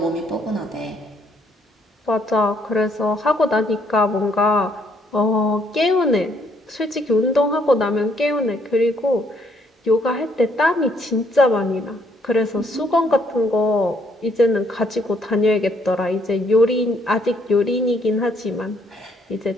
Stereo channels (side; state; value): both; normal; correlation 0.69